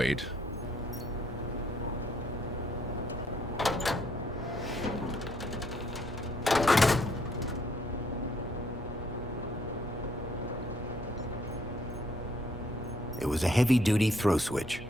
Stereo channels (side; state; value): both; normal; correlation 0.68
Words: It was a heavy-duty throw switch.